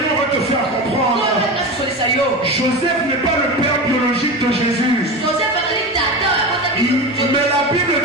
va te faire comprendre. Joseph n'est pas le père biologique de Jésus. Mais la Bible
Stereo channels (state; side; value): normal; both; correlation 0.25